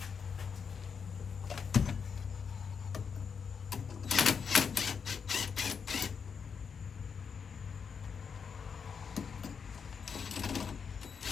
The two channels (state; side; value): quieter; right; 6.3 dB